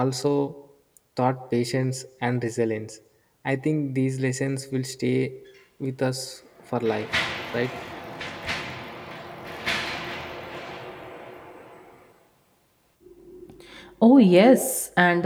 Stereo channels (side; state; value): both; identical; correlation 1.00